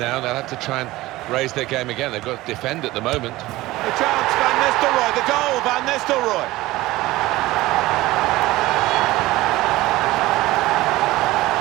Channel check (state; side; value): quieter; left; 18.2 dB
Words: They'll have to try and raise their game again. They've got to defend at the moment. The chance, Van Nistelrooy, the goal, Van Nistelrooy.